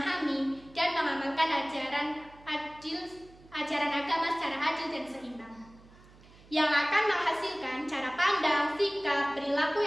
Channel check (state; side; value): noise; right; hum, 24 dB below the sound